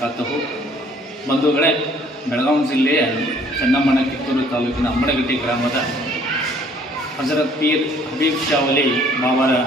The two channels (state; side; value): normal; both; correlation 0.59